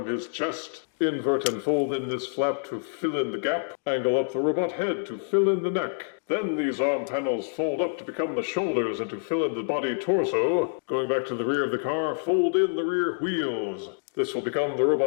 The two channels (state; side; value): silent; right; digital silence